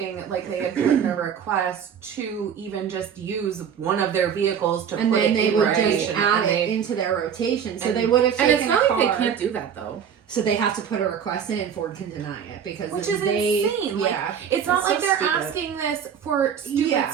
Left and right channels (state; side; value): quieter; left; 7.9 dB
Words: like, they had put in a request to even just use one of their vehicles to And put then it they in would rotation. just add And it they- into their rotation. So and- they would have taken And it's not a car. like they can't do that though. So they have to put a request in and Ford can deny it because Which then is they, insane. Like, Yeah. it's not It's like so they're stupid. asking this for stupid Yeah.